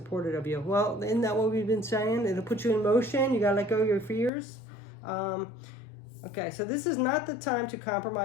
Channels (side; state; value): right; drops out; at 4.3 s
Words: of you. Well, isn't that what we've been saying? It'll put you in motion. You got to let go of your fears. Okay, so this is not the time to